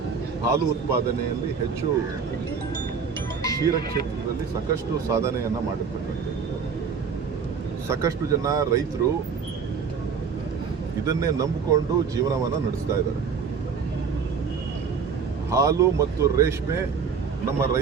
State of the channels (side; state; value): left; quieter; 6.0 dB